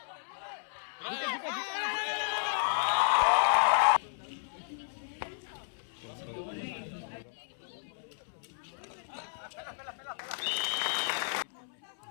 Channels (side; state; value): right; silent; 56 dB below the other